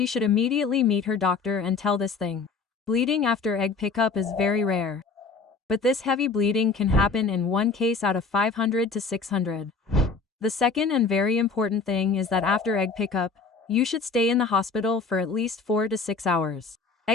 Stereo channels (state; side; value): quieter; right; 4.5 dB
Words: should immediately meet her doctor and tell this thing. Bleeding after egg pickup is very rare. But this heavy bleeding can happen in one case out of 500 to 600. The second and very important thing is that after egg pickup, you should stay in the hospital for at least 4 to 6 hours.